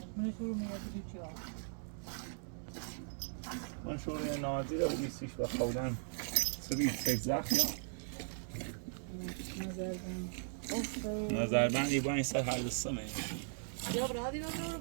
من شروع میاد چی ها من شوری نازی رو بیستیش و خودن سبید سک زخم یا نظر بندی با این سر هر دستمه یا برادی برو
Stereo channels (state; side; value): silent; left; digital silence